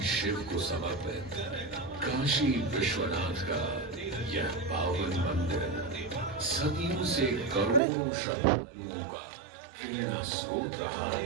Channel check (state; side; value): drops out; left; at 7.8 s